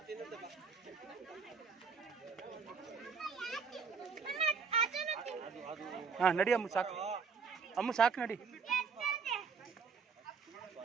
ತಿನ್ನುತ್ತೆ ಬಾ. ಹಾಂ ನಡಿ ಅಮ್ಮ, ಸಾಕು ಅಮ್ಮ, ಸಾಕು ನಡಿ.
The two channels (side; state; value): left; quieter; 5.5 dB